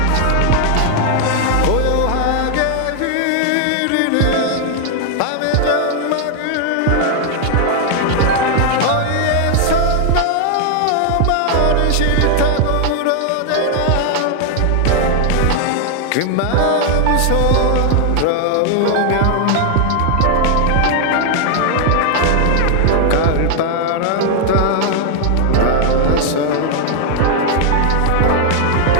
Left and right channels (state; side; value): different; both; correlation 0.00